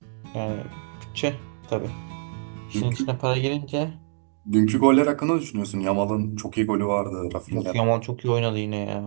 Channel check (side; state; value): left; silent; digital silence